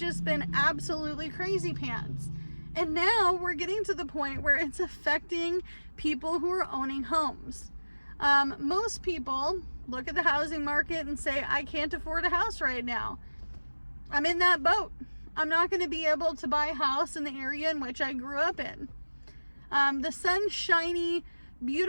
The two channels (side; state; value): both; inverted; correlation -1.00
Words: been absolutely crazy pants. And now we're getting to the point where it's affecting people who are owning homes. Most people look at the housing market and say, I can't afford a house right now. I'm in that boat. I'm not going to be able to buy a house in the area in which I grew up in. The sunshiny,